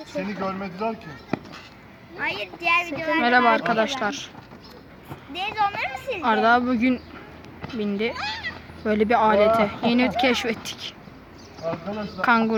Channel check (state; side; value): identical; both; correlation 1.00